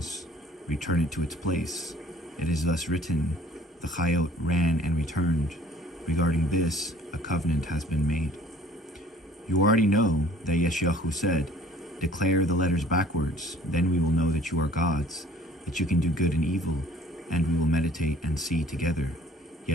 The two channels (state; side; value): normal; both; correlation 0.53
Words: return it to its place. It is thus written, the Chayot ran and returned. Regarding this, a covenant has been made. You already know that Yeshayahu said, declare the letters backwards, then we will know that you are gods, that you can do good and evil, and we will meditate and see together.